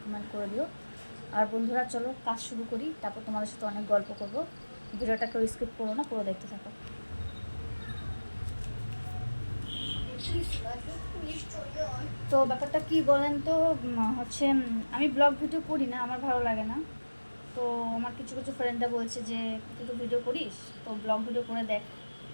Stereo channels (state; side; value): inverted; both; correlation -1.00